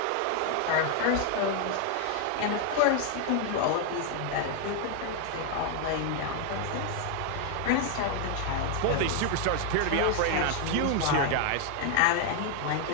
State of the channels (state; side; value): different; both; correlation 0.00